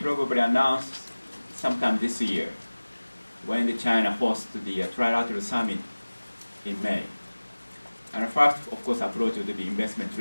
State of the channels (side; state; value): both; inverted; correlation -1.00